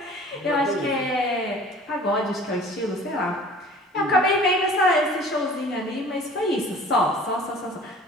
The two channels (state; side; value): normal; both; correlation 0.47